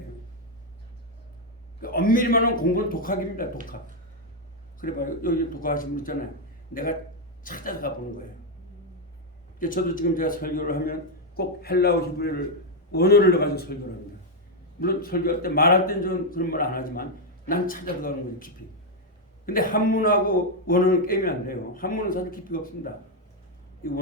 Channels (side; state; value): both; normal; correlation 0.01